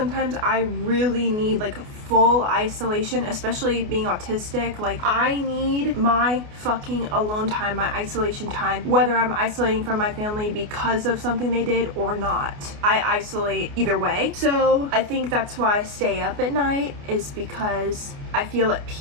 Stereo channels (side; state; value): left; late; 28 ms